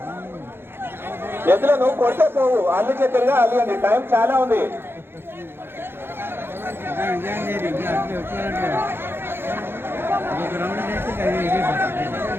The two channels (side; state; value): left; late; 0.11 ms